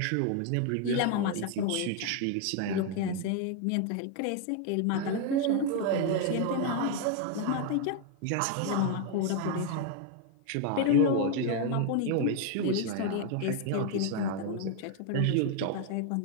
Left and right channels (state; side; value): different; both; correlation 0.01